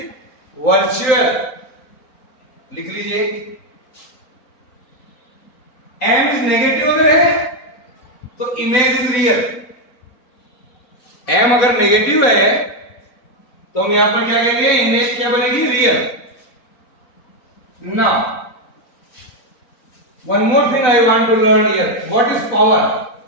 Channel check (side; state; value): right; late; 3.9 ms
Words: virtual. लिख लीजिए. m is negative अगर है तो image is real. m अगर negative है तो हम यहां पर क्या कहेंगे, इमेज क्या बनेगी, real. Now one more thing I want to learn here. What is power?